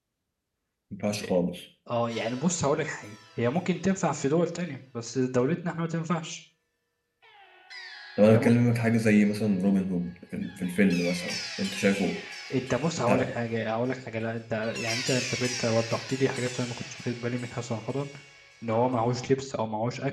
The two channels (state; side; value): identical; both; correlation 1.00